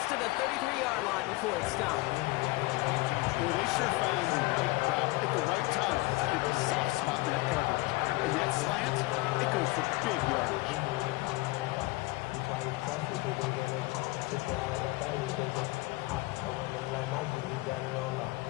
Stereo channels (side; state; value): right; quieter; 21.9 dB